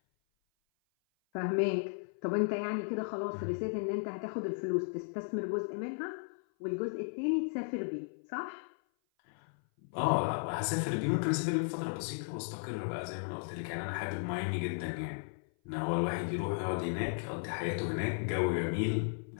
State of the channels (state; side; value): silent; right; 54 dB below the other